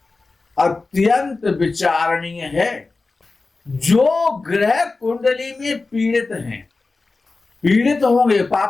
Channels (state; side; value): quieter; right; 3.7 dB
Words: अत्यंत विचारणीय है। जो ग्रह कुंडली में पीड़ित हैं, पीड़ित होंगे,